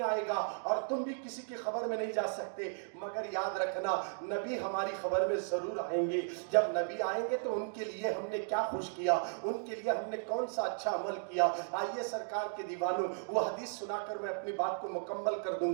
آئے گا اور تم بھی کسی کی خبر میں نہیں جا سکتے، مگر یاد رکھنا نبی ہماری خبر میں ضرور آئیں گے۔ جب نبی آئیں گے تو ان کے لیے ہم نے کیا خوش کیا، ان کے لیے ہم نے کون سا اچھا عمل کیا۔ آئیے سرکار کے دیوانوں، وہ حدیث سنا کر میں اپنی بات کو مکمل کر دوں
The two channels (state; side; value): silent; left; digital silence